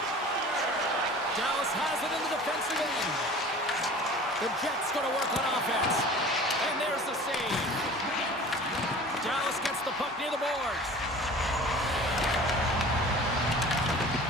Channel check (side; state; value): both; normal; correlation 0.42